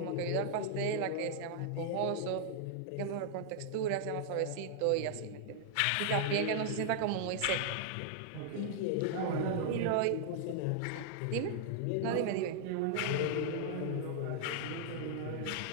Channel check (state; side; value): different; both; correlation -0.01